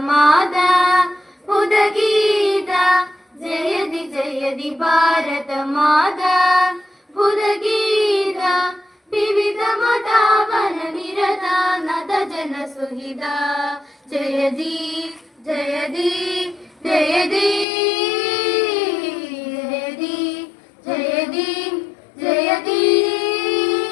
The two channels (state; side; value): drops out; right; at 17.7 s